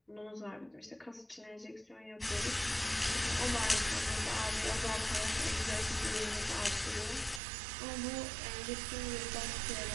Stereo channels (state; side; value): drops out; left; at 7.4 s